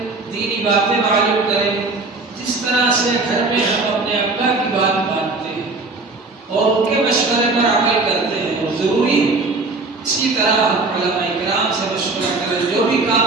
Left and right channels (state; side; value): quieter; left; 3.5 dB